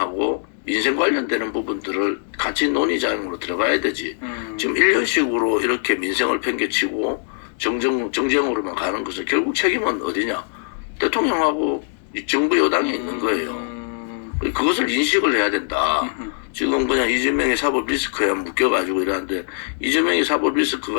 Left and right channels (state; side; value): silent; right; digital silence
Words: 민생 관련되는 부분들을 같이 논의장으로 들어가야 되지. 지금 1년씩으로 이렇게 민생을 팽개치고 정쟁으로만 가는 것은 결국 책임은 어디냐? 대통령하고 정부 여당에 있는 거예요. 그것을 인식을 해야 된다. 지금 그냥 이재명의 사법 리스크에 묶여가지고 이러는데 이재명의 사법